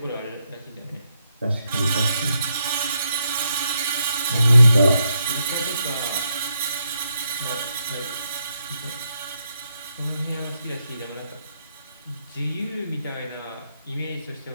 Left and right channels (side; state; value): both; inverted; correlation -0.81